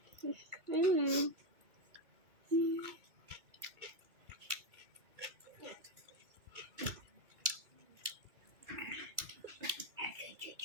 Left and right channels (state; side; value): late; left; 2.3 ms